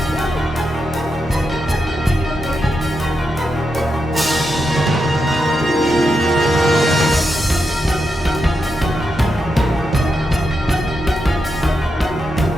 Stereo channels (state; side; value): normal; both; correlation 0.85